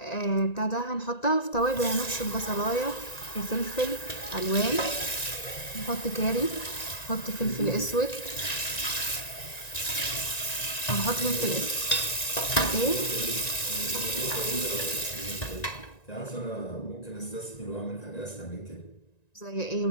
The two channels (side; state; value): right; late; 1.9 ms